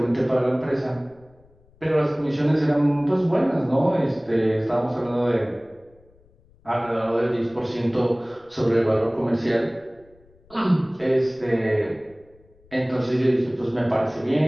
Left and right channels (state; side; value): noise; left; rumble, 30 dB below the sound